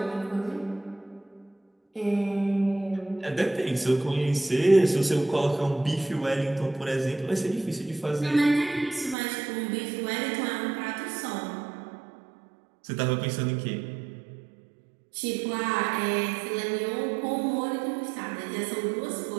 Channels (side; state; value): left; drops out; at 9.2 s